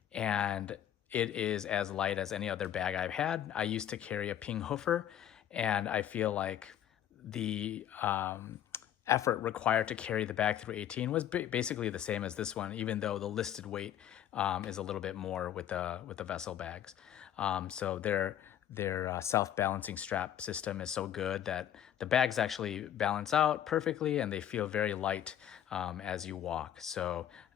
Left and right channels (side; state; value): right; quieter; 10.6 dB